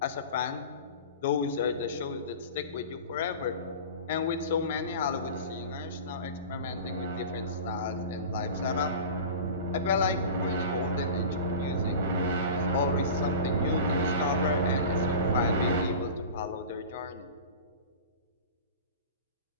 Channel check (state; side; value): inverted; both; correlation -0.34